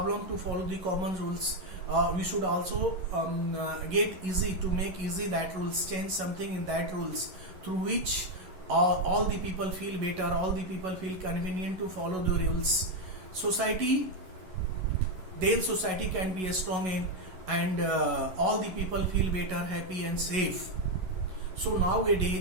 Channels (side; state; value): left; late; 11 ms